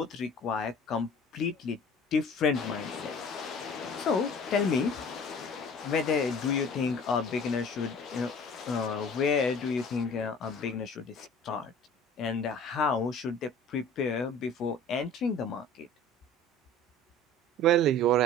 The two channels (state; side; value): normal; both; correlation 0.46